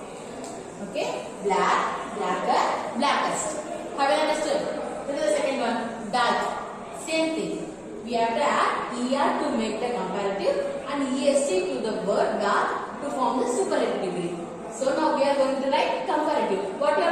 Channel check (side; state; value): both; identical; correlation 1.00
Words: Okay, black, blacker, blackest. Have you understood? This is the second one. Dark. Same thing. We have to add er to make the comparative and est to the word dark to form the superlative degree. So now we are going to write comparative. What you